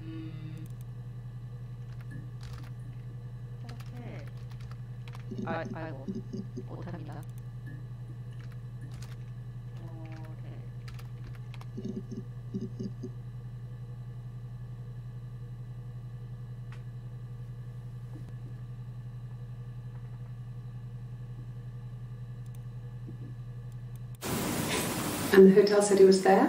아이고 못합니다. And the hotel said he was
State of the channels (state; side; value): identical; both; correlation 1.00